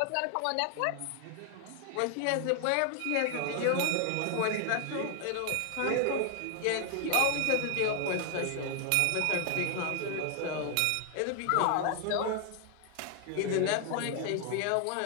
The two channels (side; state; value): both; different; correlation 0.00